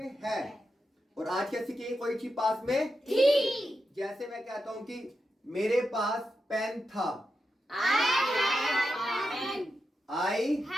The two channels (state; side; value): normal; both; correlation 0.88